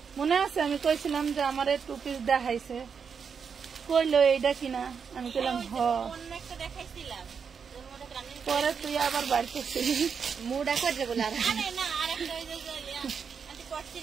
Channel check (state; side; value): quieter; left; 6.3 dB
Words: মনে আছে? আমি কইছিলাম যে আমার 2 পিস দেখাইছে, কইলো এইটা কিনা, আমি কইলাম হ। পরে তুই আবার বাড়ি করছিলি, মুডা করে বলে